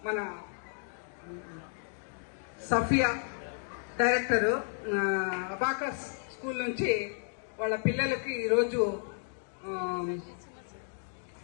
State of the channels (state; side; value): silent; right; 56 dB below the other